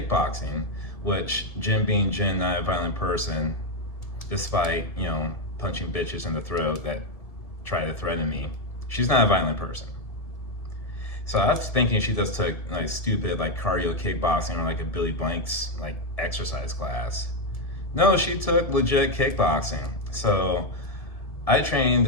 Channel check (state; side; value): late; right; 1.7 ms